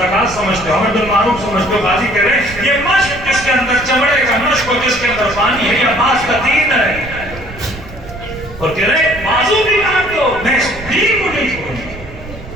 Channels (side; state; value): right; noise; rumble, 14 dB below the sound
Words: سمجھتے ہو امر بالمعروف سمجھتے ہو. غازی کہہ رہے ہیں یہ مشق جس کے اندر چمڑے کا مشق اور جس کے اندر پانی ہے یہ عباس کا دین ہے. اور کہہ رہے ہیں بازو بھی کاٹ دو میں اس دین کو نہیں